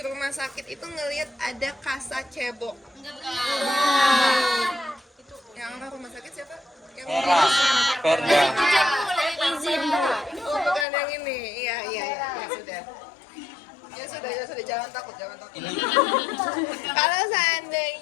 rumah sakit itu ngelihat ada kasa cebok? Yang apa rumah sakit siapa? Yang Perda. Oh, bukan yang ini. Iya, ya sudah. Ya sudah, jangan takut. Kalau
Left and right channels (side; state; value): right; drops out; at 10.9 s